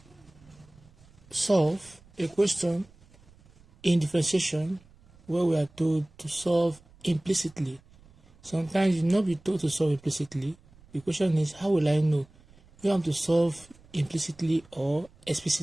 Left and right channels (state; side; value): noise; right; rumble, 27 dB below the sound